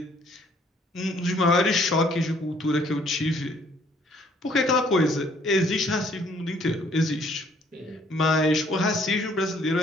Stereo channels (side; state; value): both; normal; correlation 0.62